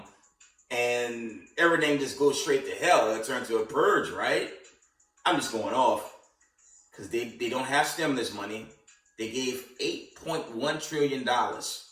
and everything just goes straight to hell. It turns to a purge, right? I'm just going off because they don't have stimulus money. They gave $8.1 trillion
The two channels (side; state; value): both; identical; correlation 1.00